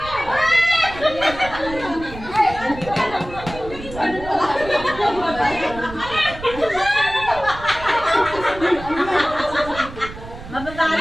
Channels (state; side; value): noise; right; rumble, 13 dB below the sound